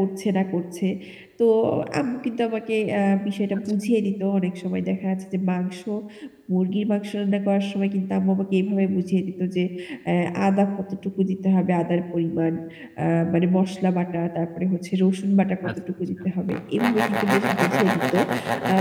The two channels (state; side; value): identical; both; correlation 1.00